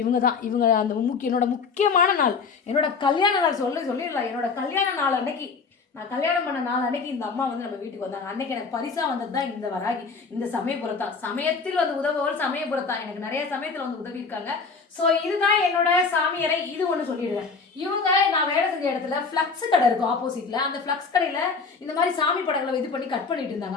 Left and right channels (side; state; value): right; quieter; 4.9 dB